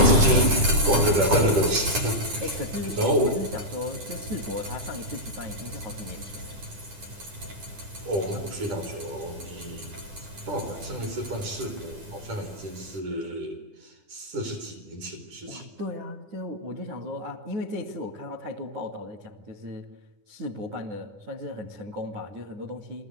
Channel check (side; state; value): left; late; 9.9 ms